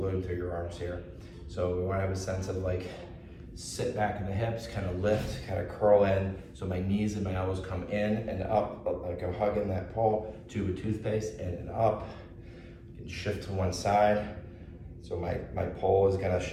through your arms here. So we want to have a sense of like, sit back in the hips, kind of lift, kind of curl in. So my knees and my elbows come in and up, like I'm hugging that pole, tube of toothpaste, in and up. You can shift to one side. So my pole is gonna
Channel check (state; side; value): identical; both; correlation 1.00